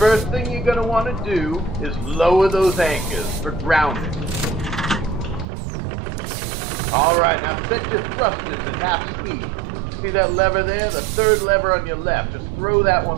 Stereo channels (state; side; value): drops out; left; at 5.5 s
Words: thing you're gonna want to do is lower those anchors for grounding. All right, now set your thrusters at half speed. See that lever there? The third lever on your left. Just throw that